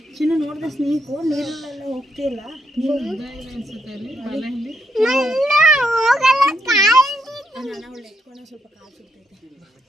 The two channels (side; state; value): both; normal; correlation 0.77